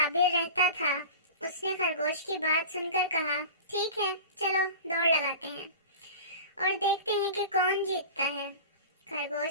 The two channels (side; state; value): both; inverted; correlation -0.34